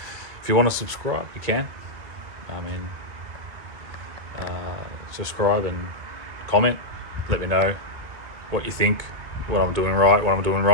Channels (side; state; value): left; late; 2.5 ms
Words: want to subscribe, you can. I mean, subscribe and comment. Let me know what you think, what I'm doing right, what I'm doing